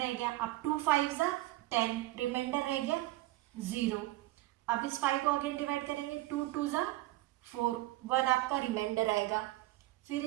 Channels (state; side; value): quieter; left; 17.8 dB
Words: गया, अब 2 5 ज़ा 10, रिमाइंडर रह गया 0। अब इस 5 को अगेन डिवाइड करेंगे, 2 2 ज़ा 4, 1 आपका रिमाइंडर आएगा। फिर